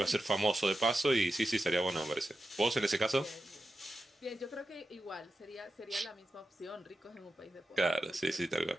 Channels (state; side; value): normal; both; correlation 0.91